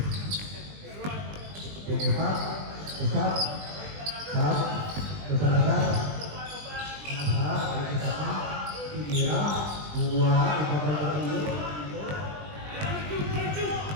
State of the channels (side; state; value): left; late; 20 ms